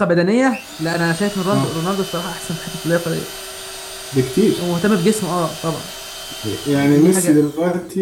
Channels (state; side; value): identical; both; correlation 1.00